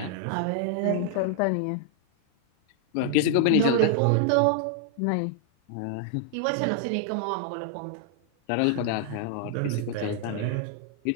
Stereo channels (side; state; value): both; different; correlation -0.01